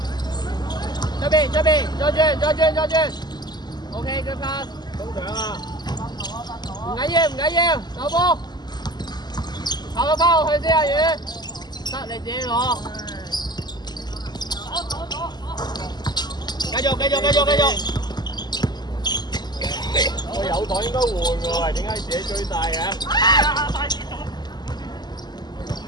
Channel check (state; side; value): late; right; 0.21 ms